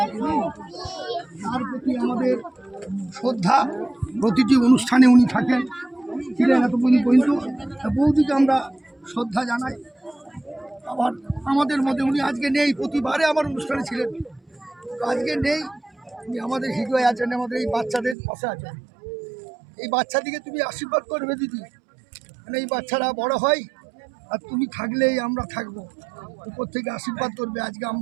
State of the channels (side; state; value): left; drops out; at 18.2 s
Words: তার প্রতি আমাদের শ্রদ্ধা। প্রতিটি অনুষ্ঠানে উনি থাকেন, ছিলেন এতদিন পর্যন্ত। বৌদিকে আমরা শ্রদ্ধা জানাই। আবার আমাদের মধ্যে উনি আজকে নেই, প্রতিবারে আমার অনুষ্ঠানে ছিলেন, আজকে নেই। উনি আমাদের হৃদয়ে আছেন, আমাদের এই বাচ্চাদের পাশে আছেন। এই বাচ্চাদিকে তুমি আশীর্বাদ করবে দিদি, মানে এই বাচ্চারা বড় হয় আর তুমি থাকলেই আমরা থাকবো। উপর থেকে আশীর্বাদ করবে। আজকে